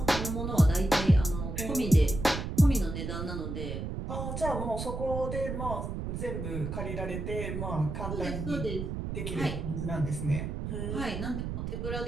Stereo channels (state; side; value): noise; right; rumble, 4 dB below the sound